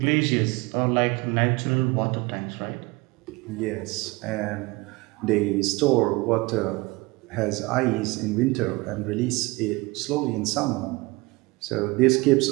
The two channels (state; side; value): quieter; left; 23.7 dB